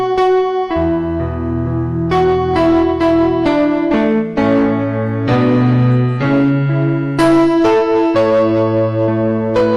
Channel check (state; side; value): identical; both; correlation 1.00